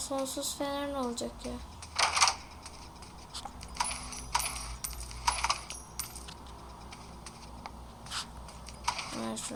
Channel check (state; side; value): identical; both; correlation 1.00